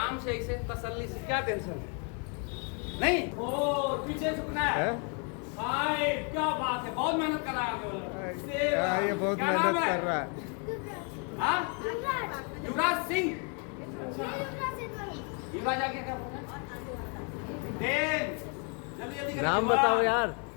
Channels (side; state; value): right; quieter; 37.6 dB